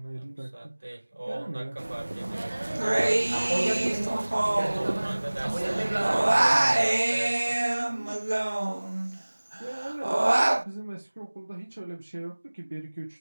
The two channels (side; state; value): both; inverted; correlation -1.00